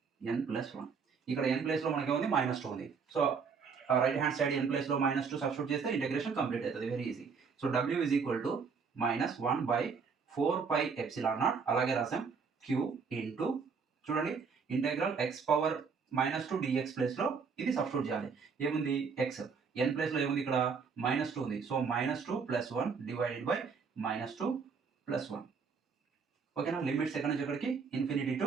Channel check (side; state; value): left; quieter; 5.6 dB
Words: n plus 1. ఇక్కడ n place లో మనకి ఏముంది, -2 ఉంది. So right hand side n place లో -2 substitute చేస్తే ఇంటిగ్రేషన్ కంప్లీట్ అవుతుంది, very easy. So w is equal to -1 by 4 pi epsilon naught, అలాగే రాసాం q ఇంటూ, చూడండి integral x power -2 dx place లో ఇది సబ్స్టిట్యూట్ చేయాలి. ఏముంది, x n ప్లేస్ లో ఏముంది, ఇక్కడ -2 ఉంది. So -2 plus 1 divided by -2 plus 1. ఓకేనా, లిమిట్స్ ఎక్కడి నుంచి ఎక్కడికి, ఇన్ఫినిటీ